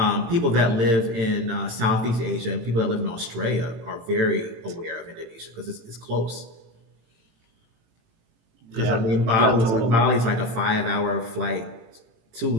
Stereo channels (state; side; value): late; left; 18 ms